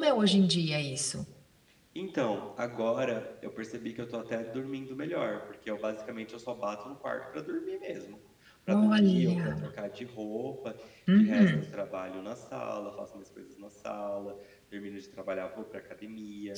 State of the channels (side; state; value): both; identical; correlation 1.00